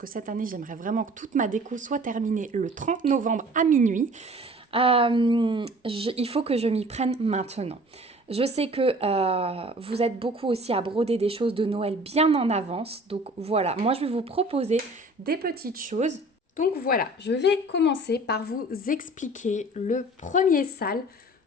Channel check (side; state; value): both; normal; correlation 0.47